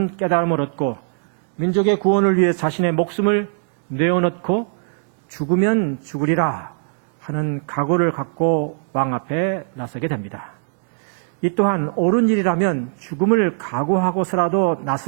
깨달음을 얻고 민족의 구원을 위해 자신의 목숨을 내어놓고 죽으면 죽으리라 하는 각오를 갖고 왕 앞에 나서게 됩니다. 이 또한 옳은 일이라면 죽음을 각오하고서라도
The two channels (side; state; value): left; silent; digital silence